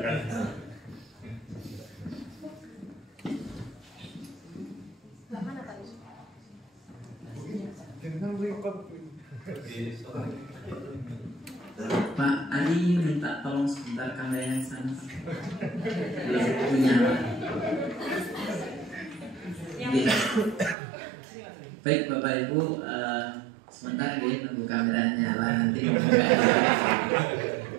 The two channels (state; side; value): drops out; left; at 20.8 s